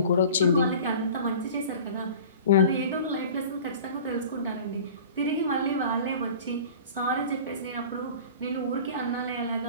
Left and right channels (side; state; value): both; inverted; correlation -0.41